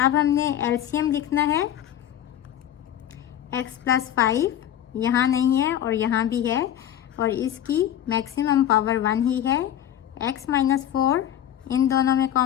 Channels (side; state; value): right; quieter; 10.9 dB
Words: हमने एलसीएम लिखना है। x प्लस 5 यहाँ नहीं है और यहाँ भी है, और इसकी मैक्सिमम पावर 1 ही है। x माइनस 4 इन दोनों में